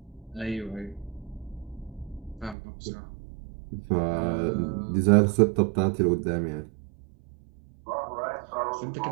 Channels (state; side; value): drops out; left; at 2.6 s